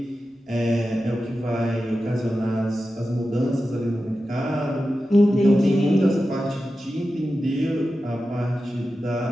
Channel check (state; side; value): normal; both; correlation 0.92